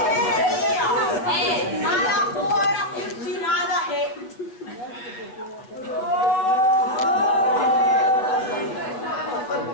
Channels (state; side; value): late; right; 7.9 ms